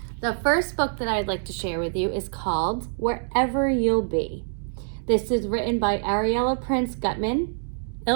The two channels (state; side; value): silent; left; digital silence